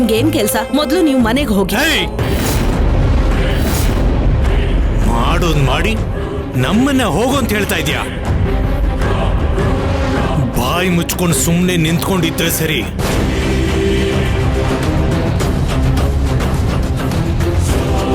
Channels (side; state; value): both; identical; correlation 1.00